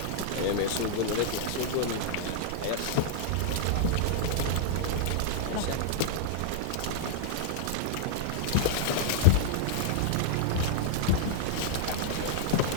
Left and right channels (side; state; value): both; different; correlation -0.01